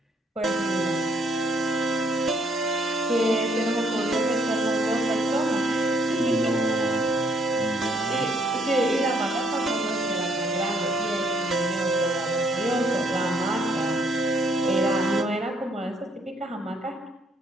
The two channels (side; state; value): both; normal; correlation 0.67